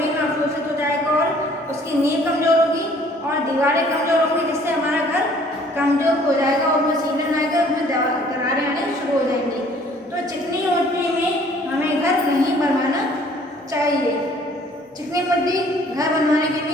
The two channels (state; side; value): normal; both; correlation 0.57